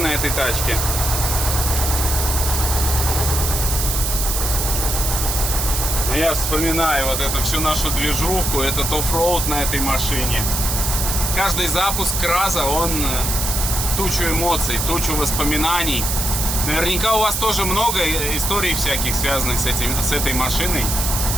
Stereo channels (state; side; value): noise; right; hiss, 1 dB below the sound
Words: этой тачке. Я вспоминаю вот эту всю нашу движуху, этот оффроуд на этой машине. Каждый запуск КРАЗа, он тучу эмоций, тучу воспоминаний. Наверняка у вас тоже много историй всяких, связанных с этой машиной.